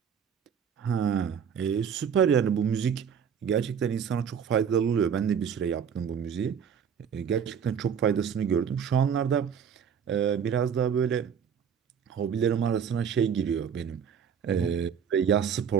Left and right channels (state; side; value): quieter; left; 7.5 dB